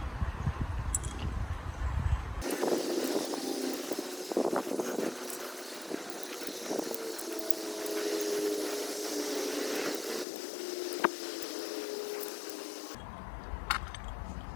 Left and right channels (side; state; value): right; drops out; at 10.2 s